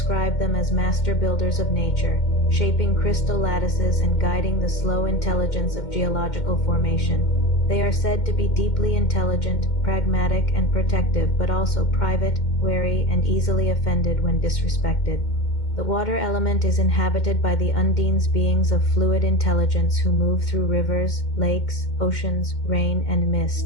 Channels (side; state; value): right; late; 2.1 ms